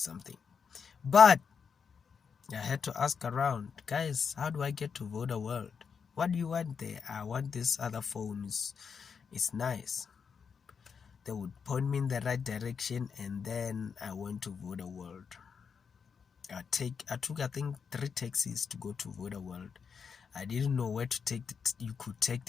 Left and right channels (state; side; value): quieter; right; 6.3 dB